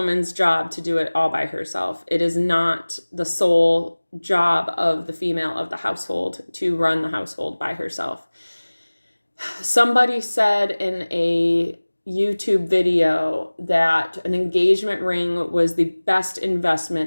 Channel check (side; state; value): both; inverted; correlation -1.00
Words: job to do it all by herself. It is not the sole job of the female of the household to run the household by herself. Somebody said in a YouTube video that an engagement ring was the best